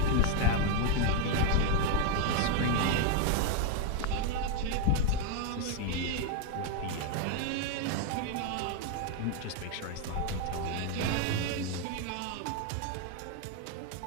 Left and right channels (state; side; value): different; both; correlation 0.01